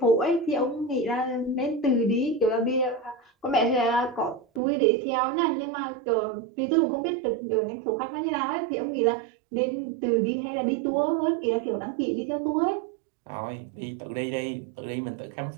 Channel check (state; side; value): drops out; left; at 4.6 s